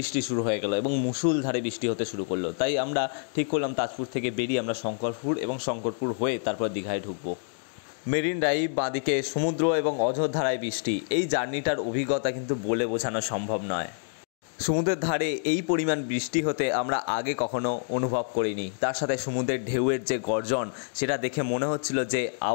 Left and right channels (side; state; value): right; silent; digital silence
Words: শুরু হয়ে গেল এবং মুষলধারে বৃষ্টি হতে শুরু করলো। তাই আমরা ঠিক করলাম তাজপুর থেকে বেরিয়ে আমরা শঙ্করপুর এবং শঙ্করপুর হয়ে তারপর দীঘায় ঢুকবো। মেরিন ড্রাইভ, বাঁদিকে সমুদ্র এবং অঝোরধারায় বৃষ্টি, এই জার্নিটার অভিজ্ঞতা কিন্তু বলে বোঝানো সম্ভব নয়। সমুদ্রের ধারে এই পরিমাণ বৃষ্টি হতে আমরা আগে কখনো অনুভব করিনি, তার সাথে সমুদ্রের ঢেউয়ের যে গর্জন সেটা দেখে মনে হচ্ছিল যে